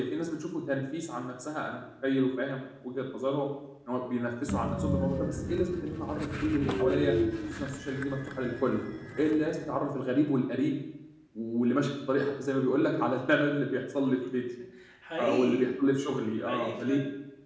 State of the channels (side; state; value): both; identical; correlation 1.00